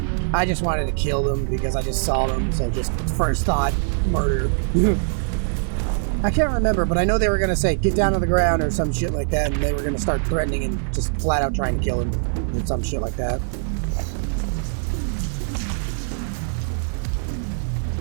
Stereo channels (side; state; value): left; silent; 62 dB below the other